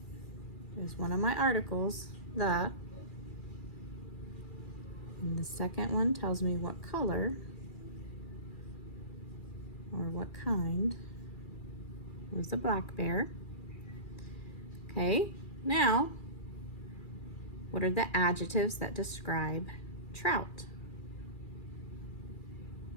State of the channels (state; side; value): late; right; 2.4 ms